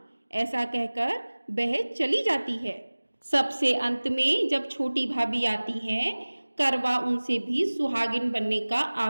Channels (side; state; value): both; inverted; correlation -1.00